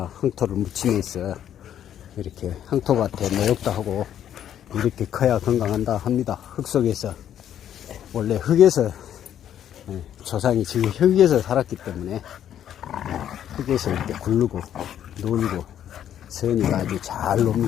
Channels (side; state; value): right; quieter; 10.3 dB